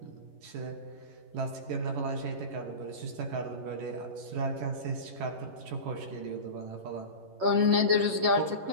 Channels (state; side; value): late; left; 11 ms